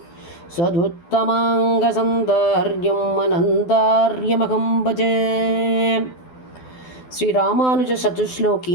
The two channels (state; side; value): late; right; 12 ms